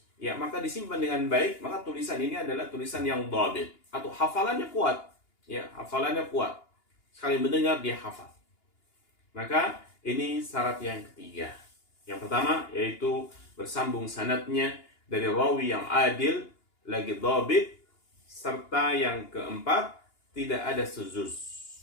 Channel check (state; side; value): late; right; 2.9 ms